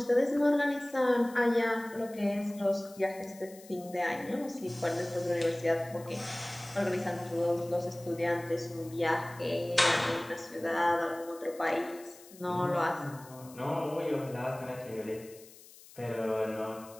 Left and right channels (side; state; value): left; noise; hiss, 21 dB below the sound